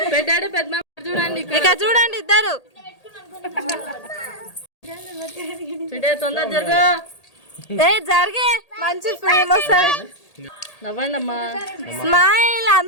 పెట్టాడు పెద్ద. చూడండి ఇక చూడండి ఇద్దరు తొందర జరుగు. జరిగే మంచి ఫిల్మ్ వస్తుంది. నవ్వండి అమ్మా. స్మైల్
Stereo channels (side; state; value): right; late; 1.8 ms